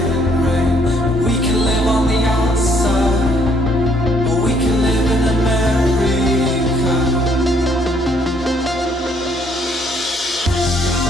rain. We can live on the outside, or we can live in America.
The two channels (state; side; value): normal; both; correlation 0.66